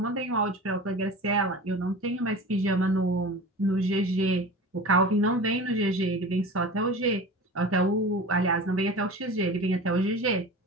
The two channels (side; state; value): both; normal; correlation 0.34